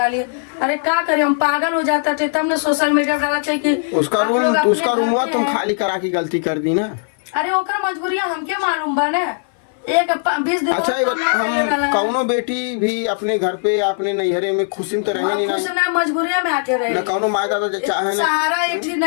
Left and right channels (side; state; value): right; silent; 59 dB below the other